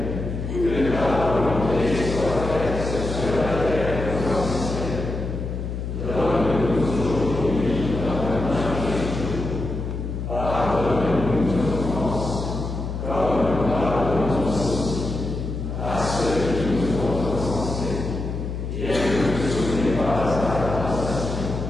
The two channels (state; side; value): noise; left; hum, 5 dB below the sound